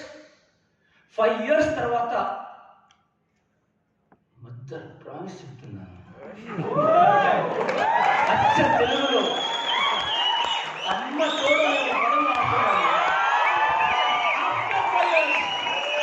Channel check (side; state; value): both; identical; correlation 1.00